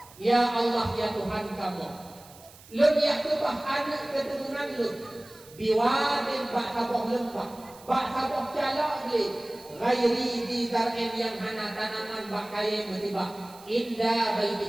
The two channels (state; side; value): noise; right; hiss, 22 dB below the sound